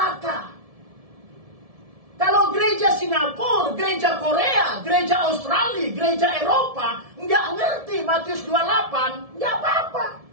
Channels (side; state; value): left; late; 1.7 ms